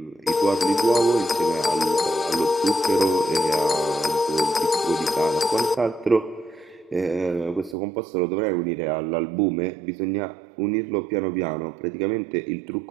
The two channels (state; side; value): drops out; left; at 7.8 s